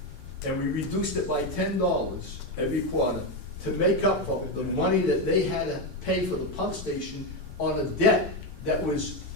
And we reduced it by $10 every quarter to make up for the money that they had to pay for the pump station on a debt that was,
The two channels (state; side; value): late; left; 2.6 ms